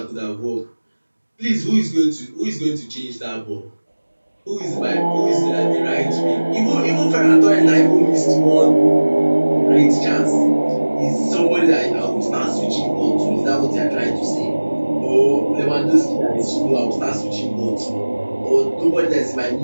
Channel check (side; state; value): both; inverted; correlation -1.00